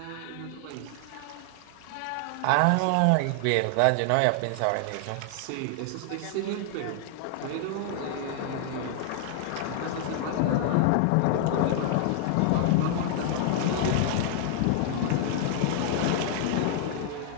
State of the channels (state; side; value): different; both; correlation 0.00